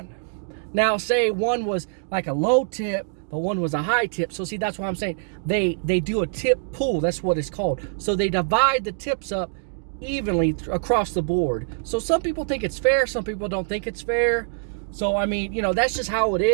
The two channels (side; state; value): left; silent; digital silence